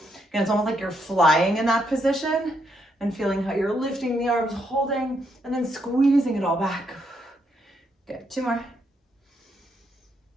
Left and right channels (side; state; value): both; normal; correlation 0.77